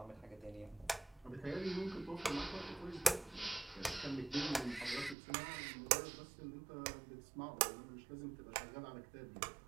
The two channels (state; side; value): drops out; left; at 5.2 s